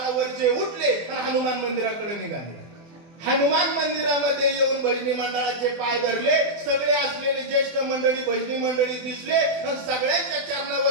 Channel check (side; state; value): left; late; 24 ms